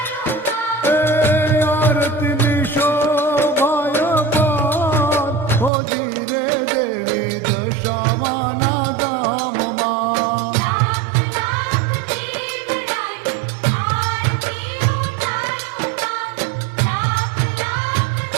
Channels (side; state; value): left; drops out; at 5.7 s